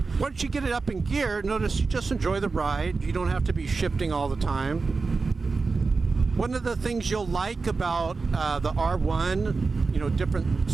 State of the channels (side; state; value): left; quieter; 4.3 dB